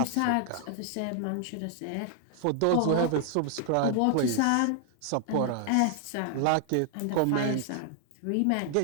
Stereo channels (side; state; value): both; different; correlation 0.00